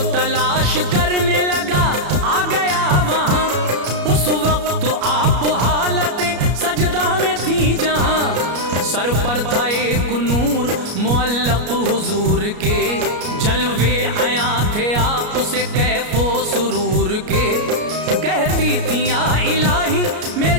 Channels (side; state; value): left; late; 33 ms